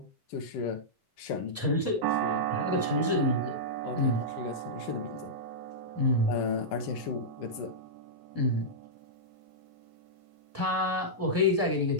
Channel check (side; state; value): both; normal; correlation -0.12